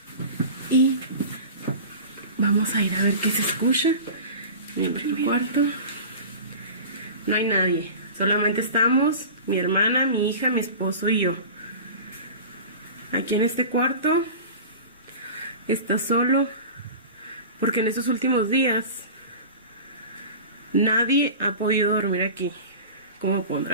y vamos a ir a ver qué se escucha en el cuarto. No hay nadie, solamente estamos mi hermana, mi hija, mi esposo y yo. Aquí en este cuarto está solo porque en estos últimos días nadie ha podido dormir aquí. Como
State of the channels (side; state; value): both; inverted; correlation -0.35